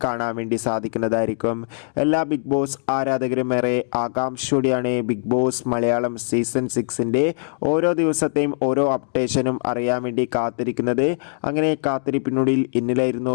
കാണാൻ വേണ്ടി സാധിക്കുന്നതായിരിക്കും. എല്ലാ ബിഗ് ബോസ് ആരാധകരും ഏറെ ആകാംക്ഷയോടെയാണ് ബിഗ് ബോസ് മലയാളം സീസൺ 6ൻ്റെ ഓരോ ദിവസത്തെയും ഓരോ അപ്ഡേഷനും അറിയാൻ വേണ്ടി കാത്തിരിക്കുന്നത്. അങ്ങനെ കാത്തിരിപ്പിനുള്ളിൽ ഇന്നലായിരുന്നു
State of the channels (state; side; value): silent; right; 64 dB below the other